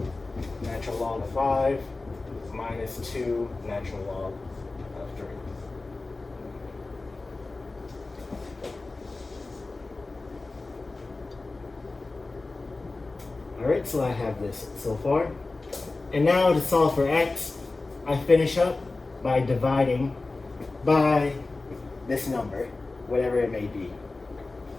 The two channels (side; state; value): right; quieter; 3.4 dB